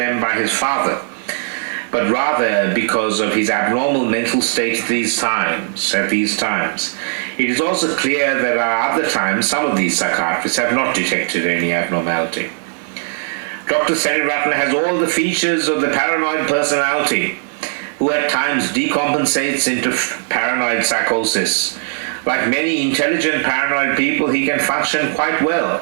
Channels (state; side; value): silent; left; 68 dB below the other